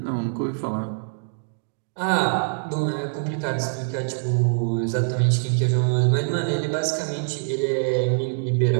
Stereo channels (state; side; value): silent; left; digital silence